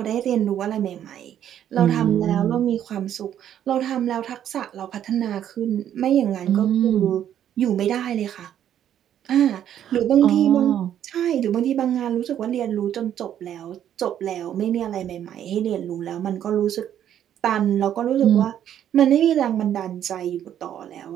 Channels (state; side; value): quieter; left; 10.3 dB